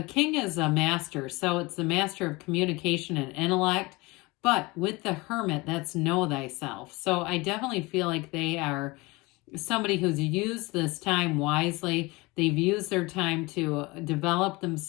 king is a master. So it's the master of communication and intellect. But with the hermit, that's know thyself. So I definitely feel like they are somebody who's used this time wisely. They've used their time to develop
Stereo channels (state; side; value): quieter; right; 23.6 dB